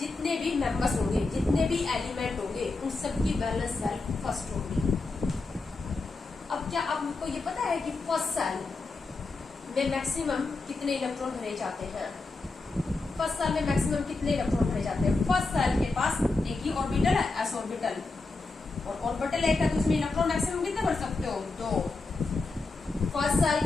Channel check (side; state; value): right; quieter; 3.6 dB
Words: भी मेंबर्स होंगे, जितने भी एलिमेंट होंगे, उन सबकी वैलेंस सेल फर्स्ट होगी। अब क्या आपको ये पता है कि फर्स्ट सेल में मैक्सिमम कितने इलेक्ट्रॉन भरे जाते हैं? फर्स्ट सेल में मैक्सिमम कितने इलेक्ट्रॉन भरे जाते हैं? फर्स्ट सेल के पास एक ही ऑर्बिटल है, एस ऑर्बिटल, और ऑर्बिटल एक है, तो उसमें इलेक्ट्रॉन मैक्सिमम कितने भर सकते हो? 2। फर्स्ट